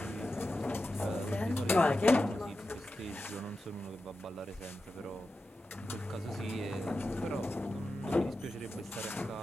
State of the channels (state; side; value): normal; both; correlation 0.91